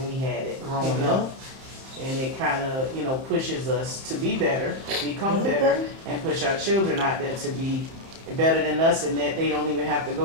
we had it growing Yeah. up. And it kind of, pushes us to be better, become better, and push our children out there to be better than us, and that they don't even have to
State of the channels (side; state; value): left; late; 31 ms